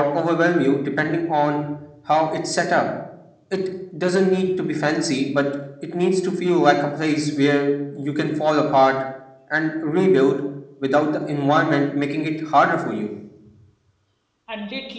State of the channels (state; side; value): identical; both; correlation 1.00